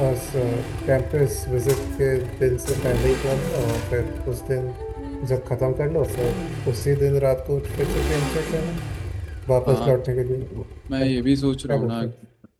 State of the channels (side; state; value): both; identical; correlation 1.00